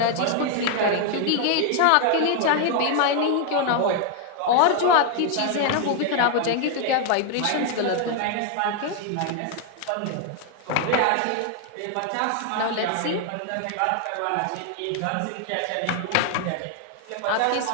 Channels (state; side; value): different; both; correlation 0.00